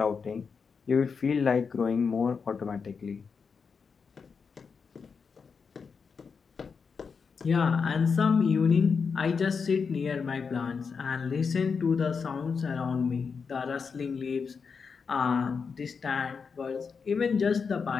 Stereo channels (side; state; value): right; quieter; 5.6 dB